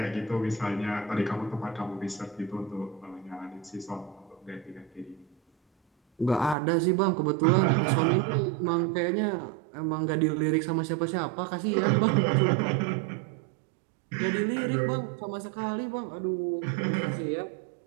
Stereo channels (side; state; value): left; drops out; at 6.6 s